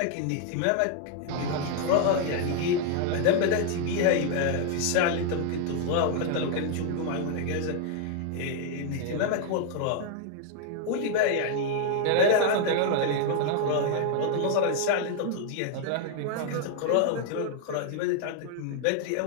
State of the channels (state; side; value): different; both; correlation 0.00